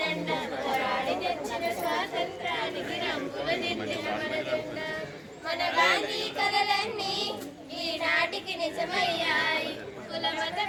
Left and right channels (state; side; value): identical; both; correlation 1.00